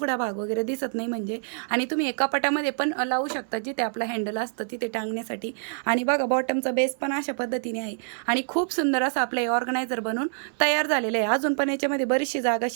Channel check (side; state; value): left; silent; 61 dB below the other